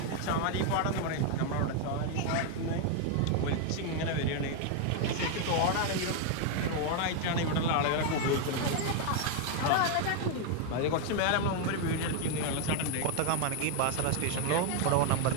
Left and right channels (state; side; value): different; both; correlation 0.00